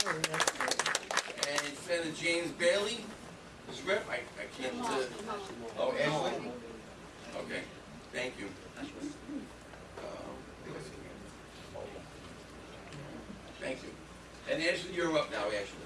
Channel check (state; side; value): identical; both; correlation 1.00